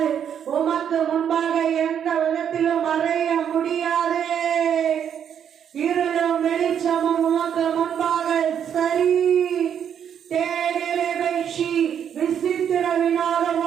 உமக்கு முன்பாக எந்த விதத்திலும் மறைய முடியாது. இருளும் வெளிச்சமும் உமக்கு முன்பாக சரி. விசித்திர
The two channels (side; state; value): left; quieter; 8.7 dB